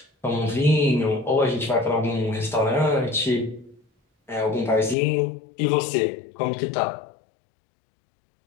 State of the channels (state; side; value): drops out; right; at 5.0 s